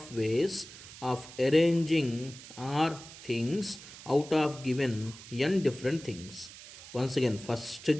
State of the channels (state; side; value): noise; right; hiss, 16 dB below the sound